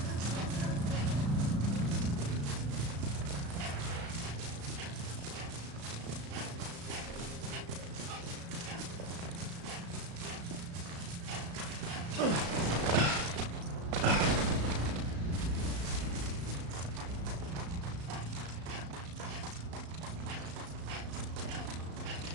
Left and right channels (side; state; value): left; late; 35 ms